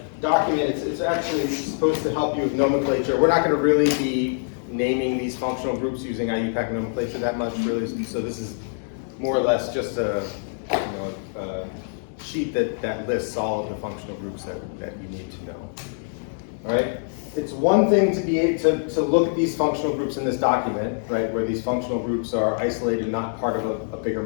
document. It's actually supposed to help you with nomenclature. We're not going to really be naming these functional groups using IUPAC nomenclature that much, really. So this is more or less just a sheet that lists all of the functional groups that you need to know. All right. It's one thing to be able to look at these functional groups in this document, right, where these functional groups are isolated, not part of a bigger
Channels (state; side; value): silent; right; digital silence